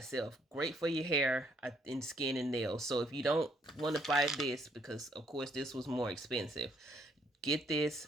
Great for your hair and skin and nails. So if you don't want to buy this, because of course this was more expensive, get this,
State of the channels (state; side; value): normal; both; correlation 0.68